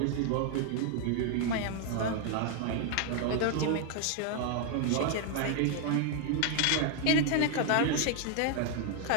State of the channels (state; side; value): different; both; correlation 0.00